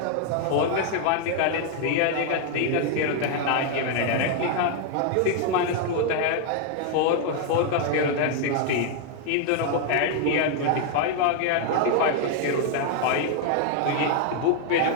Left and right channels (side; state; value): both; different; correlation 0.00